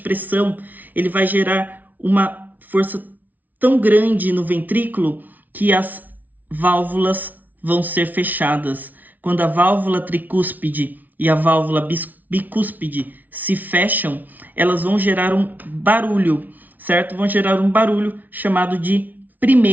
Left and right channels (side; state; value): left; late; 0.079 ms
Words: ele vai gerar uma força tão grande no ventrículo que as válvulas vão ser fechadas. Quando a válvula tricúspide e a válvula bicúspide se fecham, elas vão gerar um barulho, certo? Vão gerar um barulho chamado de